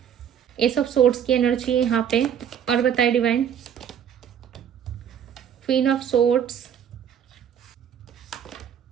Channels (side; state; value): left; quieter; 8.8 dB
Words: एस ऑफ सोर्ड्स की एनर्जी है यहाँ पे, और बताए divine. Queen of swords,